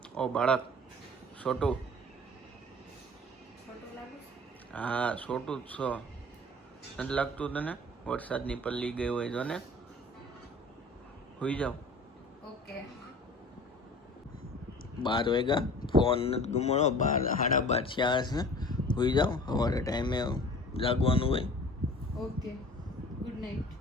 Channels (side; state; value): both; normal; correlation 0.43